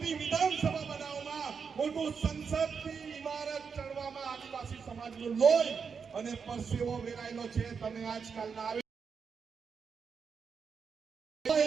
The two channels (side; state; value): left; quieter; 6.0 dB